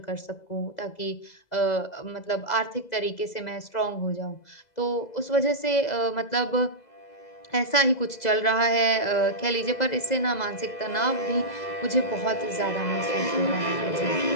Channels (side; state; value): right; late; 2.0 ms